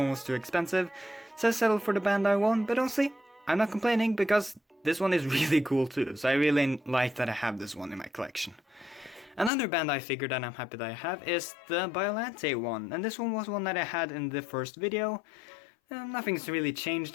was too expensive, so I settled for the Bandai one. But honestly, I'm not complaining, because this one is really cool too, so I really like that I have this one in my collection. Another Bandai figure that I'm happy that I have is the Biolante one, and this one was one that I had in the first video. Nothing's really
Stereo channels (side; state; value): right; drops out; at 9.5 s